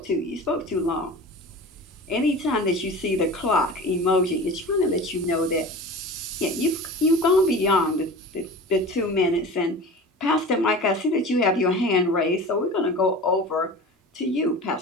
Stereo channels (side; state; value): both; normal; correlation 0.35